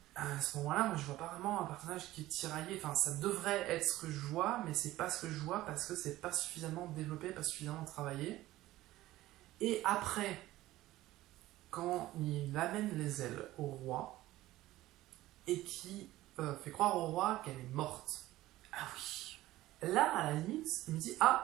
à ce moment-là, moi je vois pas vraiment un personnage qui est tiraillé. Enfin, ça devrait être ce que je vois, mais c'est pas ce que je vois parce que c'est pas suffisamment développé, pas suffisamment travaillé. Et après, quand il amène les ailes au roi et qui fait croire au roi qu'elle est morte. Ah oui. Là, à la limite, il me dit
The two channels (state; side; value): quieter; left; 16.3 dB